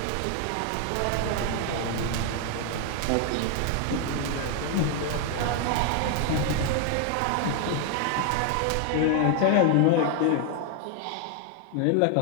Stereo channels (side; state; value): both; different; correlation 0.00